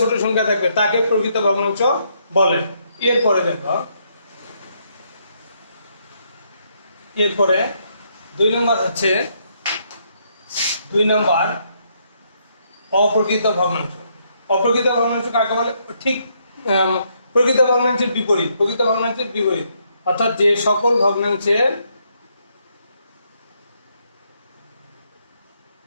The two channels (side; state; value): both; inverted; correlation -0.74